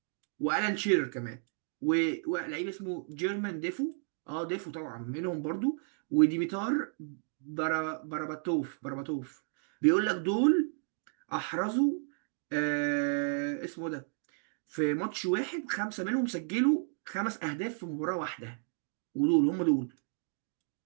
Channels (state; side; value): silent; left; 56 dB below the other